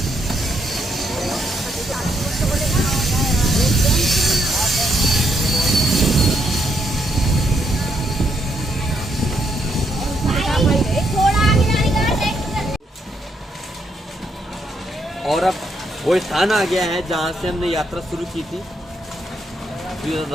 और अब वो स्थान आ गया है जहाँ से हमने यात्रा शुरू की थी,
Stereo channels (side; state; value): both; normal; correlation 0.76